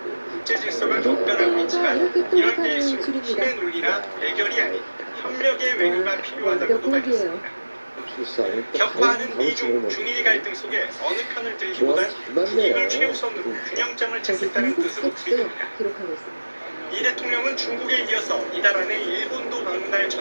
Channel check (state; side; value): inverted; both; correlation -1.00